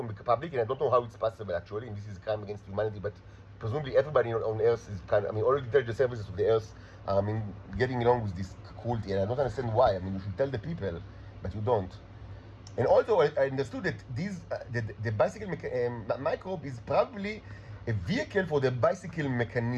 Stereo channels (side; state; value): both; identical; correlation 1.00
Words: the public, and I don't know how it's possible actually, and this is a crime against humanity, but presumably everybody on Earth is all the intelligence services of the Earth are getting along with this cruelty, and I don't understand why. You should tell the people, but you don't. And also I understood that the bicycle microbe is probably a vehicle for the bicycle